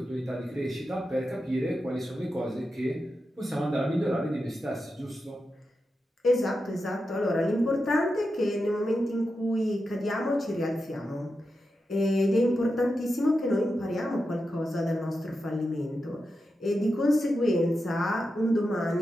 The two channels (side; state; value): both; normal; correlation 0.89